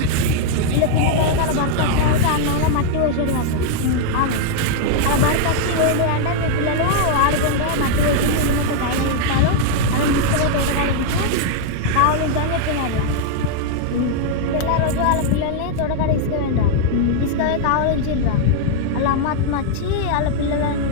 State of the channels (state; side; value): different; both; correlation 0.00